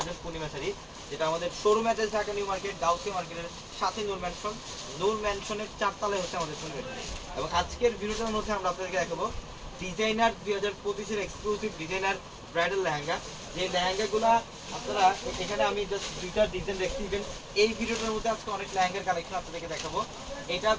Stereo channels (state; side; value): identical; both; correlation 1.00